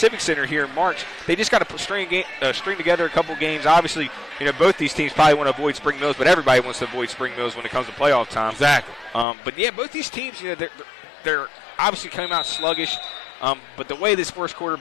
Center here in March. They just got to string together a couple games. Obviously, both these teams probably want to avoid Spring Mills, but everybody wants to avoid Spring Mills when it comes to playoff time. Exactly. But yeah, both these teams, they're obviously coming out sluggish. But the way this first quarter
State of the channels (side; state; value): right; drops out; at 9.2 s